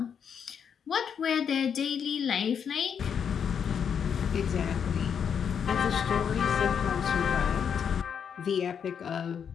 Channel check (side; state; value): right; quieter; 7.5 dB